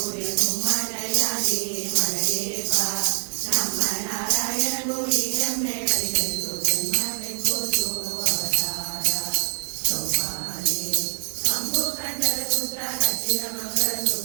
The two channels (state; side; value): silent; left; digital silence